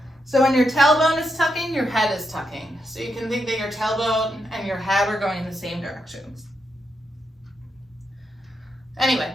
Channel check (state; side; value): normal; both; correlation 0.83